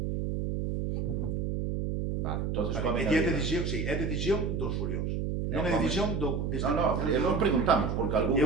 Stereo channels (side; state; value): right; noise; hum, 1 dB below the sound